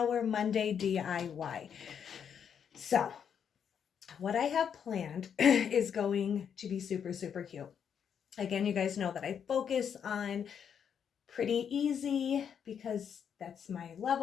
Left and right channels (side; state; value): right; quieter; 7.8 dB